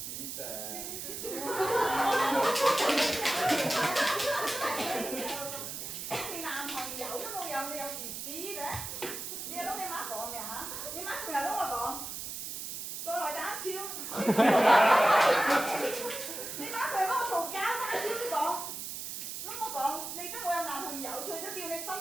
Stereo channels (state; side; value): noise; right; hiss, 7 dB below the sound